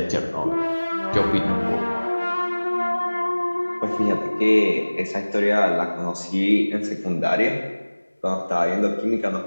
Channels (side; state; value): both; inverted; correlation -1.00